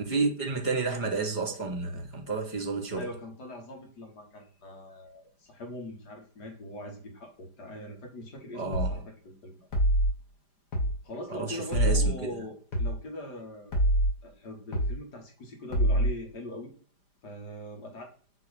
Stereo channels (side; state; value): right; late; 5.0 ms